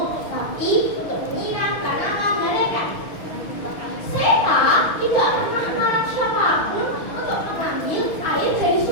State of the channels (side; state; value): right; late; 6.4 ms